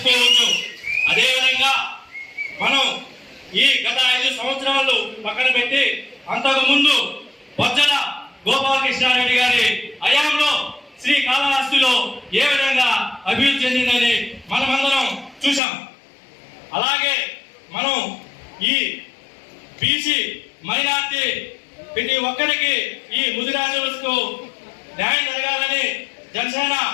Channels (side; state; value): right; drops out; at 15.6 s